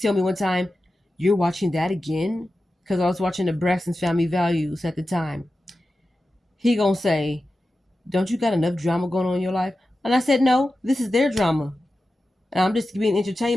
me one time, "You're watching that again?" Because I was watching the Braxton's Family Values at the time. He gonna say, "Don't you got enough drama going on in your life?" And I said, "No, this is their drama. And I'm just being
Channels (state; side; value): normal; both; correlation 0.93